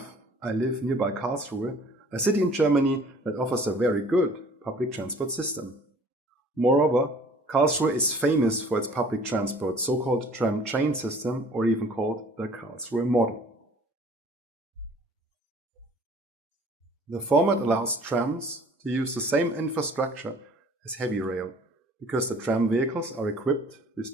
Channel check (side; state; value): both; normal; correlation 0.52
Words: I live nearby Karlsruhe, a city in Germany that offers a very good public transport system. Moreover, Karlsruhe is famous for its public transport, so-called tram-train system, or even called the Karlsruhe model. The format allows trams to use the same infrastructure as heavy rail, because the tram vehicles are equipped